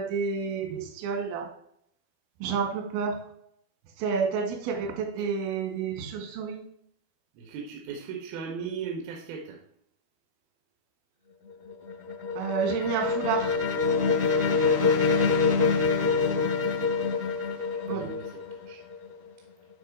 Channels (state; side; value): late; left; 12 ms